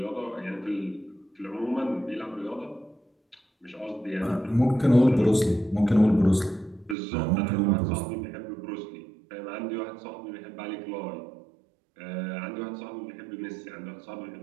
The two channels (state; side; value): drops out; left; at 7.0 s